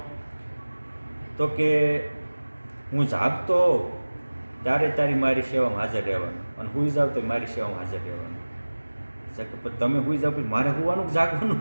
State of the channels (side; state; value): both; inverted; correlation -1.00